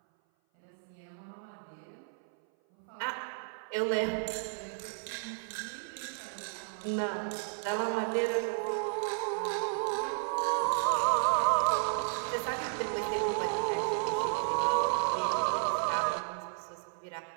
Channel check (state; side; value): silent; left; 56 dB below the other